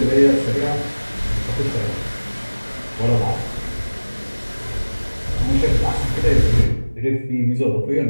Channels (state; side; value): inverted; both; correlation -1.00